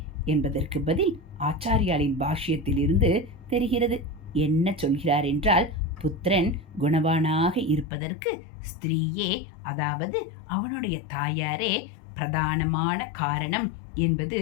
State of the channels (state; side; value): drops out; right; at 7.9 s